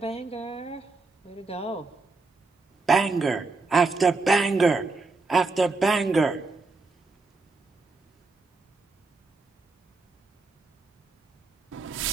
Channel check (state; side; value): quieter; left; 3.7 dB